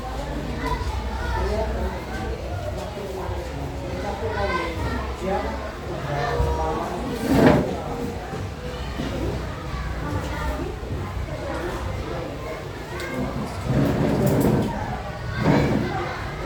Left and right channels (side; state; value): both; identical; correlation 1.00